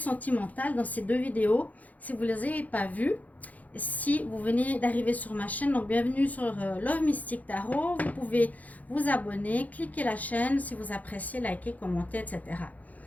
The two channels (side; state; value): right; late; 0.077 ms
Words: dans ces deux vidéos. Si vous ne les avez pas vues, si vous venez d'arriver sur ma chaîne, donc bienvenue sur Love Mystic Tarot. Vous pouvez vous abonner, cliquer la chaîne si vous appréciez, liker, commenter, etc.